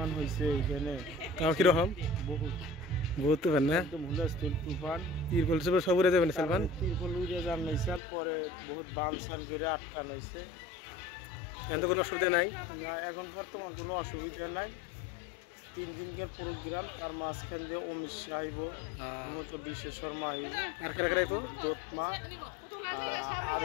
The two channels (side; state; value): right; drops out; at 8.0 s